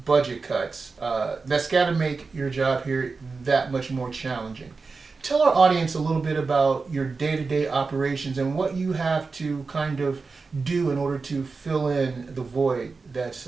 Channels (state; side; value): quieter; left; 4.3 dB